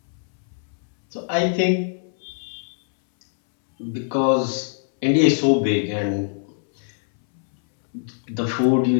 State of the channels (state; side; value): silent; right; 64 dB below the other